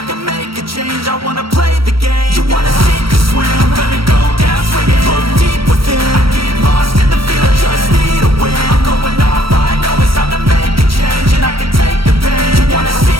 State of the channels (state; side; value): late; left; 0.75 ms